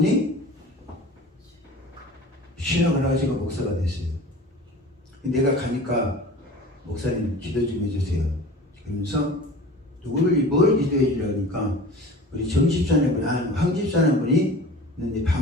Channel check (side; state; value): both; normal; correlation 0.39